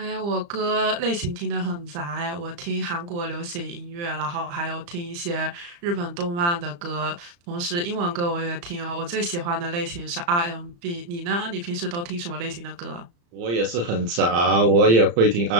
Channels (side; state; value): left; late; 35 ms